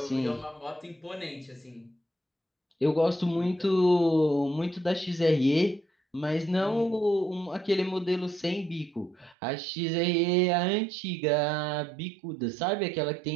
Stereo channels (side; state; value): left; drops out; at 9.3 s